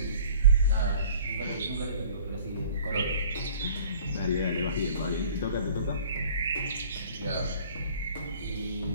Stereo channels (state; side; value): inverted; both; correlation -0.49